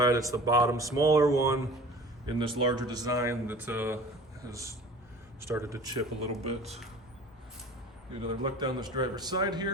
It's the bottom smaller one in this larger design that has started to chip a little bit. Get another look down this driver's side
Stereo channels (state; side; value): normal; both; correlation 0.43